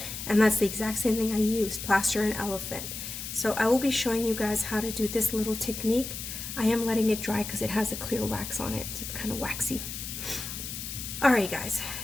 and that's the exact same thing I used, plaster and elephant. So I will be showing you guys how to do this little technique. I am letting it dry because it has a clear wax on it, so it's kind of waxy. Alright guys,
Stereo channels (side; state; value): left; noise; hiss, 7 dB below the sound